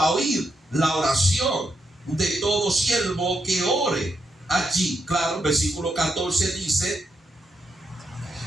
oír la oración de todo siervo que ore allí. Claro, versículo 14 dice:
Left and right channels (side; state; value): both; normal; correlation 0.82